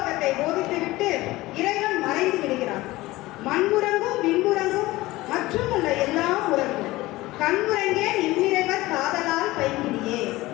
போதித்துவிட்டு இறைவன் மறைந்து விடுகிறார். மண்முறங்கும் விண்முறங்கும் மற்றும் உள்ள எல்லாம் உறங்கும், கண்முறங்கே இவ்விறைவர் காதலால் பைங்கிடியே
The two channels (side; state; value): right; quieter; 18.8 dB